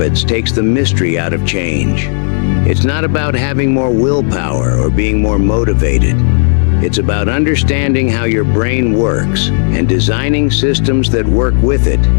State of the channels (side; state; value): right; silent; digital silence